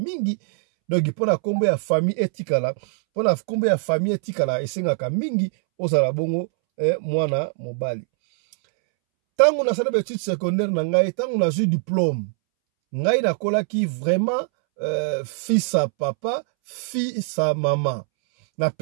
donc, pona kombo ya famille etikala, pona kombo ya famille etikala, esengaka mingi, osala bongo, mwana mobali. Tango na sala études secondaires na ngai, tango na ju diplôme, ngai na kolaki vraiment fils à papa, fils à maman. Na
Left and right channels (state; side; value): silent; left; 64 dB below the other